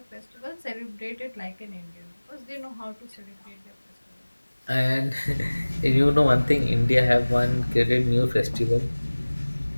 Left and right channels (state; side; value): inverted; both; correlation -1.00